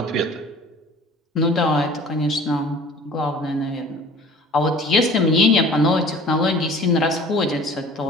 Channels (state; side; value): normal; both; correlation 0.47